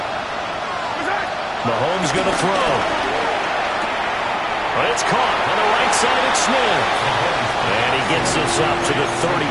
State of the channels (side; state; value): both; identical; correlation 1.00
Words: Mahomes going to throw. But it's caught on the right side of Smith. And he gets this up to the 34